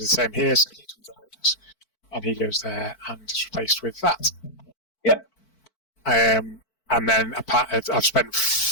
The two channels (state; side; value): late; right; 4.5 ms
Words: same here. So he comes out. And he goes there and is replaced with that. Yeah. And then I've spent